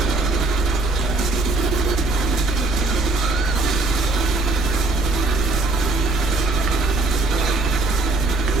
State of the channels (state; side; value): quieter; left; 3.1 dB